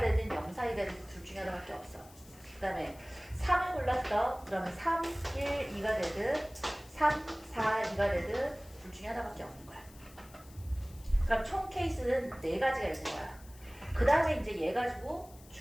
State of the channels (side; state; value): left; noise; hiss, 23 dB below the sound